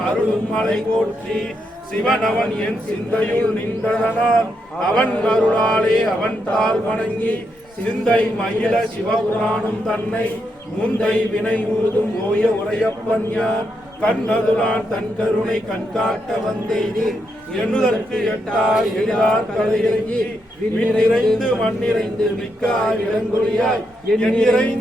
அருளும் மலை போற்றி சிவன் அவன் என் சிந்தையுள் நின்றதனால் அவன் அருளாலே அவன் தாள் வணங்கி சிந்தை மயில சிவபுராணம் தன்னை முந்தை வினை ஊதும் ஓய உரையப்பன் யார் கண்ணதுரான் தன் கருணை கண்காட்ட வந்தேனி எண்ணுதற்கு எட்டாய் எழிலார் கலையிறங்கி விண்ணிறைந்து மண்ணிறைந்து மிக்காய் இளங்கொழியாய்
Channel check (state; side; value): normal; both; correlation 0.81